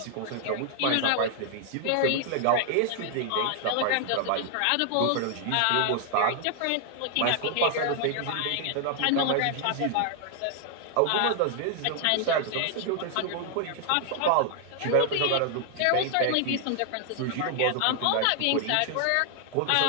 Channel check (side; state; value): both; different; correlation 0.00